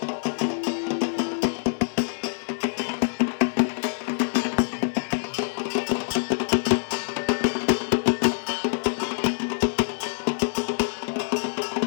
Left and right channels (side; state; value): right; silent; 59 dB below the other